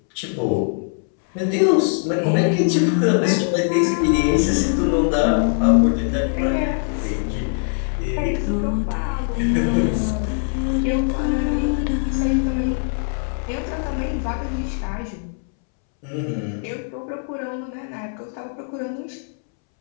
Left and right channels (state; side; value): silent; right; 65 dB below the other